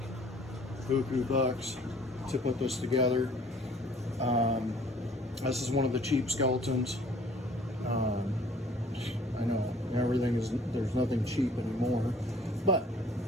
buku bucks to put this together. This is one of the cheap skeletons. I know there's nothing cheap anymore, but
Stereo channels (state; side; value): normal; both; correlation 0.55